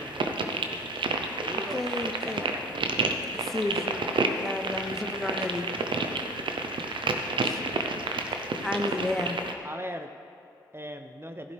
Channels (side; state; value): both; normal; correlation 0.34